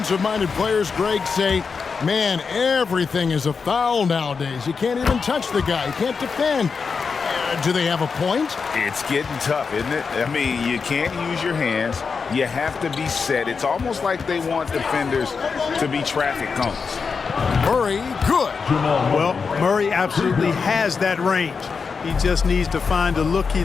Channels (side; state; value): right; quieter; 5.3 dB